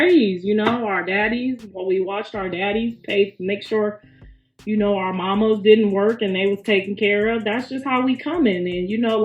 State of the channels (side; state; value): both; identical; correlation 1.00